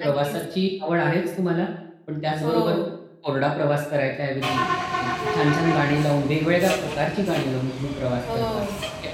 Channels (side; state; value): both; identical; correlation 1.00